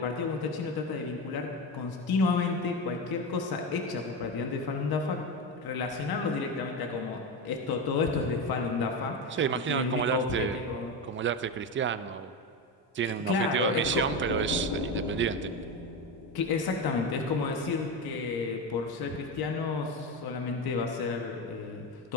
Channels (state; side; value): normal; both; correlation 0.17